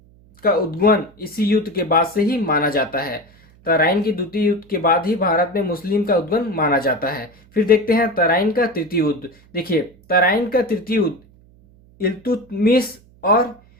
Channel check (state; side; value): noise; right; hum, 28 dB below the sound